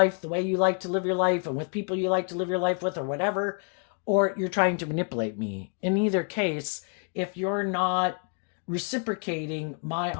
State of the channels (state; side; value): quieter; right; 39.2 dB